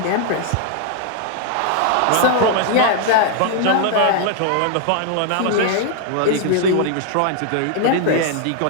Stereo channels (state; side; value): different; both; correlation 0.00